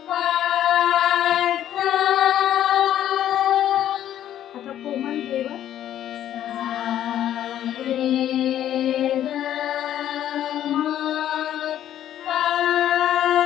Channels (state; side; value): quieter; right; 11.4 dB